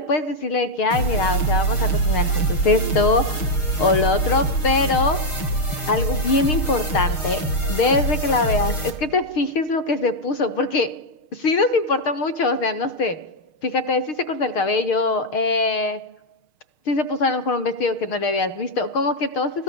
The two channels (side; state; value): right; late; 6.5 ms